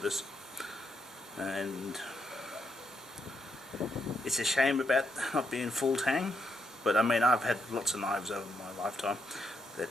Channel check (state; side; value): normal; both; correlation 0.80